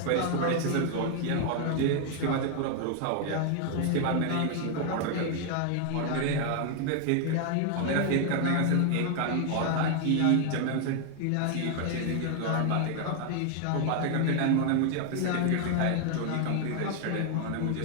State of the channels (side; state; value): both; different; correlation 0.00